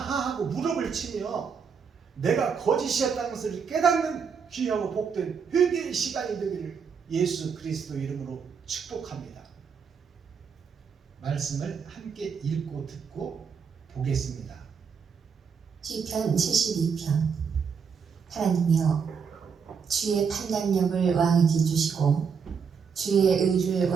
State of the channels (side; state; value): left; quieter; 6.2 dB